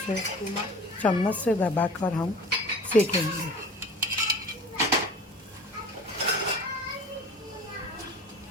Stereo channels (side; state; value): both; normal; correlation 0.41